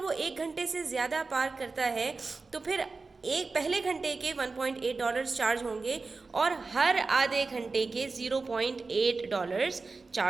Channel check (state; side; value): quieter; left; 4.0 dB